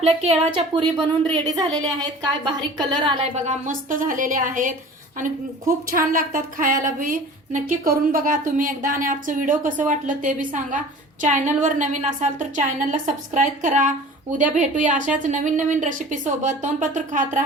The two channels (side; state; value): both; normal; correlation 0.42